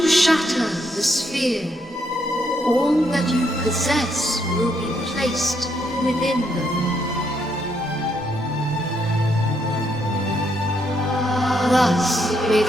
shatter the sphere, all that you possess will be placed within them. Thus, may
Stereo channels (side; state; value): both; normal; correlation 0.75